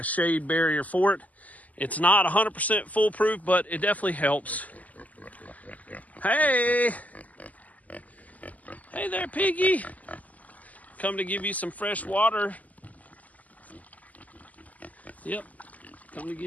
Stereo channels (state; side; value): late; right; 0.076 ms